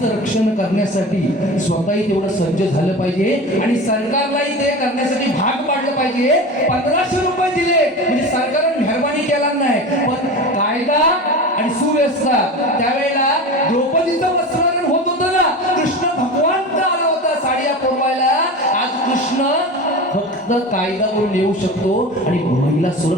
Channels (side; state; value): both; normal; correlation 0.30